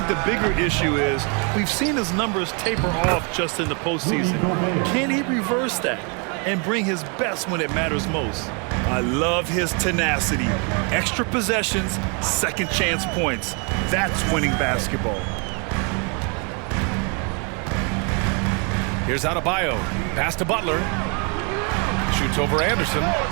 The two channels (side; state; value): left; quieter; 35.7 dB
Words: the bigger issue is we've seen his numbers taper off just in the postseason. Can he reverse that and bring his best when it matters most? I love his tenacity. Extra possessions, second chance points. That's winning basketball. Here's Adebayo. Pass to Butler. Shoots over Anderson.